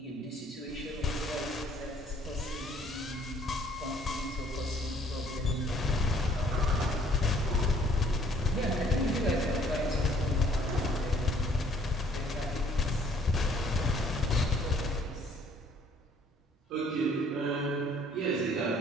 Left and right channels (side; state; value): both; normal; correlation 0.60